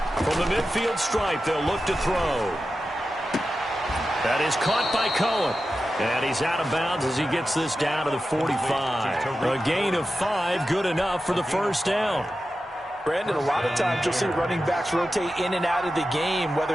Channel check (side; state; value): both; normal; correlation 0.92